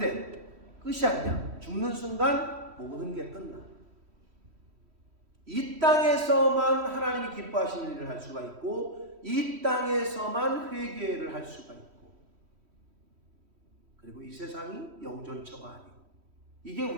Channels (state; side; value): late; left; 3.1 ms